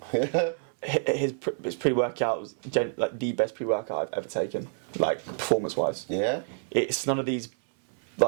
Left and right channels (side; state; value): left; silent; 59 dB below the other